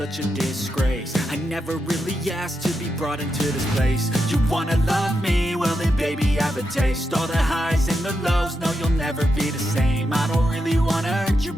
a disgrace. I never really asked to be brought into this place. You wanna love me? Well then baby have a taste. All the highs and the lows, no you'll never be the same. I don't really wanna hurt you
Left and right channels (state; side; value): normal; both; correlation 0.85